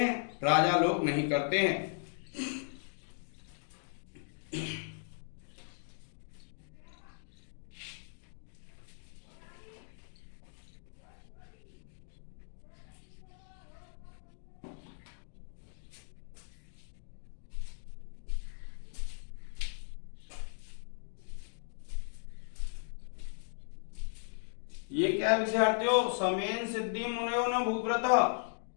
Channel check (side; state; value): right; silent; digital silence